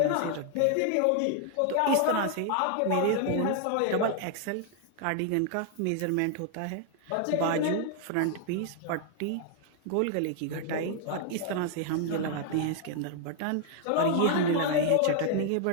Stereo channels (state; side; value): different; both; correlation 0.00